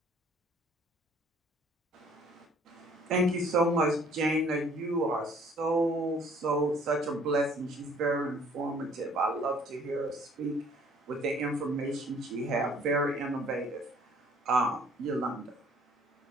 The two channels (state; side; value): normal; both; correlation 0.57